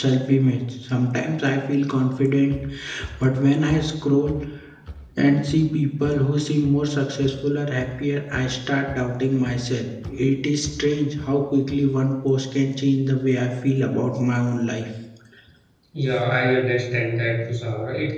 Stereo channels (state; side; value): identical; both; correlation 1.00